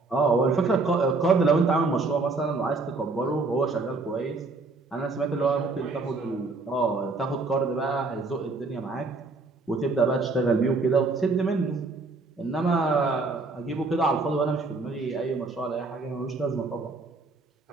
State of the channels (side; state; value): left; quieter; 3.7 dB